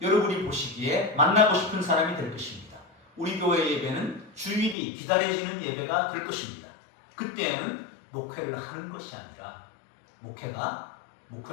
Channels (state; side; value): drops out; right; at 4.8 s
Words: 여러분이 보시기에 만나고 싶은 사람이 될 것입니다. 우리 교회 예배는 주일이 기다려지는 예배가 될 것입니다. 그때에는 목회를 하는 것이 아니라 목회가